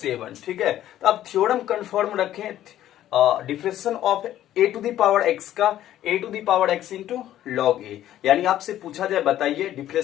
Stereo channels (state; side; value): quieter; right; 12.5 dB